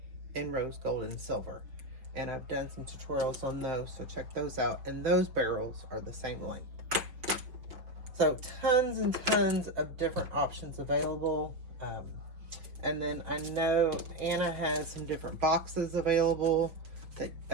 in rose gold and silver, and I've done some tutorials on those, so check those out. And those barrels are the same length. So tons and tons of different options available. And then I know Anna has some different boxes available, that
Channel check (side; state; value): left; late; 5.6 ms